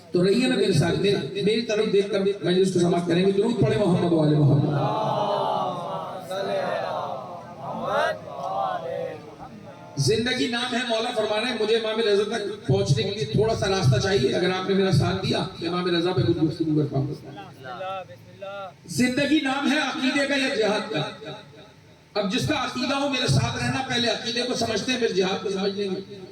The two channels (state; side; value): identical; both; correlation 1.00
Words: تو رہیے نا میرے ساتھ، میری طرف دیکھ کر مجلس کو سماعت کریں گے۔ درود پڑھیں محمد و آل محمد۔ زندگی نام ہے، مولا فرما رہے ہیں مجھے امام رضا تک پہنچنے کے لیے تھوڑا سا راستہ چاہیے، اگر آپ نے میرا ساتھ دیا تو امام رضا پہ کچھ گفتگو کر پاؤں گا۔ زندگی نام ہے عقیدے کا یا جہاد کا؟ اب جس کا عقیدہ ہو میرے ساتھ رہنا، پہلے عقیدے کو سمجھتے ہیں پھر جہاد کو سمجھ لیں گے۔